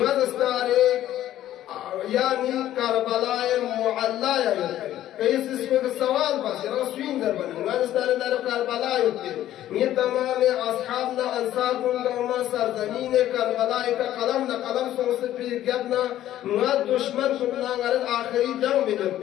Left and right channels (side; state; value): right; quieter; 12.9 dB